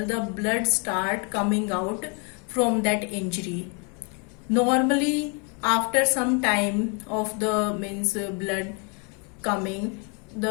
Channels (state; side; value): quieter; right; 36.0 dB